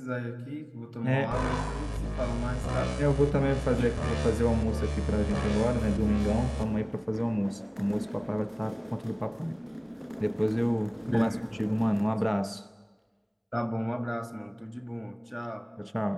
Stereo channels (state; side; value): identical; both; correlation 1.00